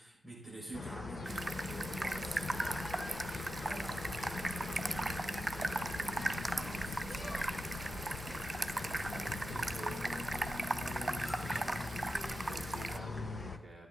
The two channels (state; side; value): normal; both; correlation 0.90